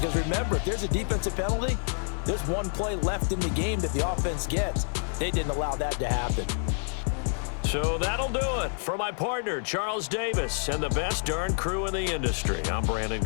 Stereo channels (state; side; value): silent; right; digital silence